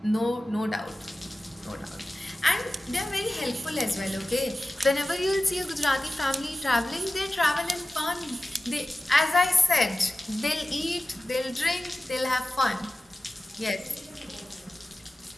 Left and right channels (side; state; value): both; normal; correlation 0.95